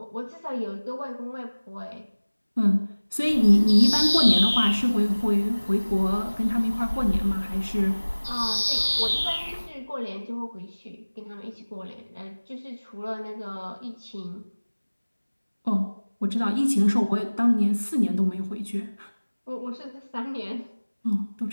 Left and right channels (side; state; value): both; inverted; correlation -1.00